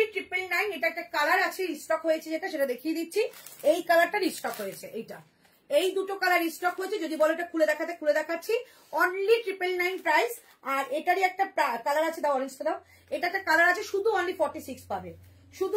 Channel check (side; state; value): both; identical; correlation 1.00